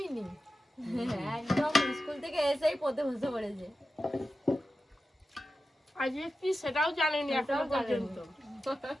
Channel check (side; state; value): both; normal; correlation 0.92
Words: নি, একদম স্কুল থেকে এসেই পড়তে বসে পড়েছে। আজকে কি সেটাও জানেনি এখনো সেটাও জানেনি। পর্যন্ত।